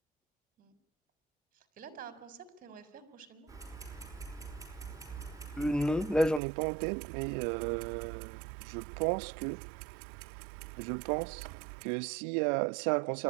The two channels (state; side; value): drops out; left; at 6.4 s